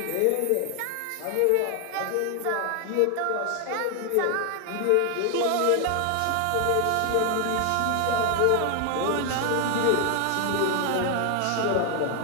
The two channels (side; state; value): both; different; correlation 0.00